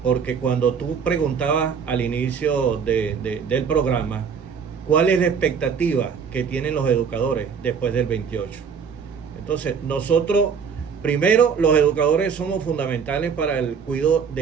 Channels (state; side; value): quieter; left; 6.4 dB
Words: porque cuando tú preguntabas al inicio del programa cuál es la expectativa que tienen los educadores después del 28. Entonces, nosotros, primero, los educadores somos fundamentales para el cuidado